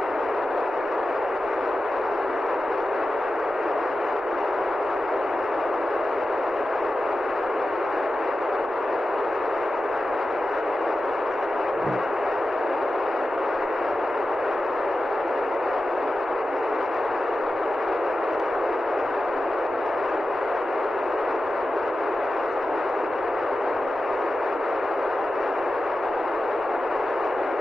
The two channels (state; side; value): normal; both; correlation 0.92